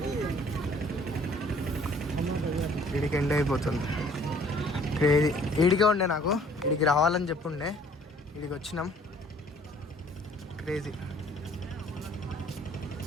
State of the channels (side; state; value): both; normal; correlation 0.56